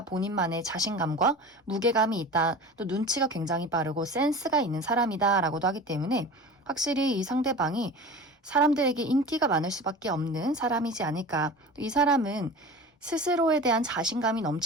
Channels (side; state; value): both; normal; correlation 0.35